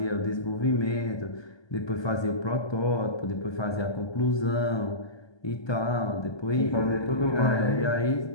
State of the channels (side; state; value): right; late; 1.2 ms